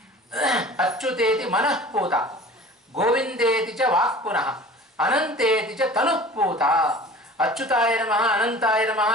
ಅಚ್ಯುತೇತಿ ಮನಃಪೂತ, ಗೋವಿಂದೇತಿ ಚ ವಾಕ್ ಪುನಃ, ಅನಂತೇತಿ ಚ ತನುಃಪೂತ. ಅಚ್ಯುತಾಯ ನಮಃ, ಅನಂತಾಯ ನಮಃ,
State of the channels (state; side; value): normal; both; correlation 0.42